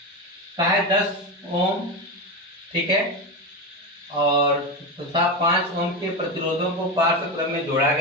कहा है 10 ओम, ठीक है, और तथा 5 ओम के प्रतिरोधों को पार्श्व क्रम में जोड़ा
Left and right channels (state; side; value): normal; both; correlation 0.17